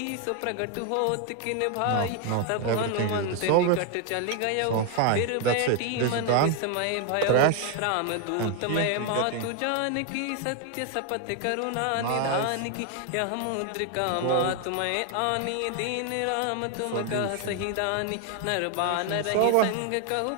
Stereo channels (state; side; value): different; both; correlation 0.01